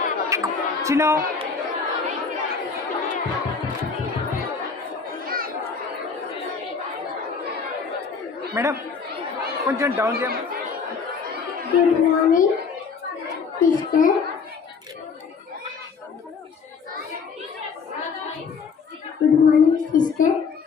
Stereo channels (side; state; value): right; quieter; 5.5 dB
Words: Chino. Madam, కొంచెం down చేయమ్మా. Good morning, sister. Good morning, sister.